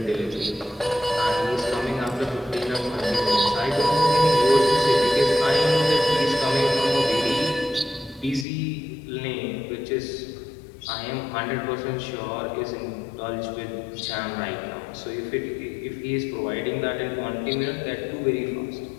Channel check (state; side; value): drops out; right; at 8.5 s